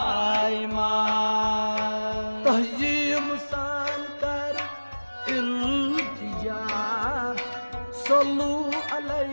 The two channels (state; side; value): inverted; both; correlation -1.00